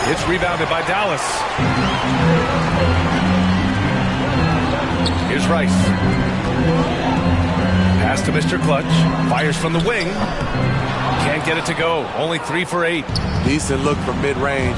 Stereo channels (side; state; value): both; identical; correlation 1.00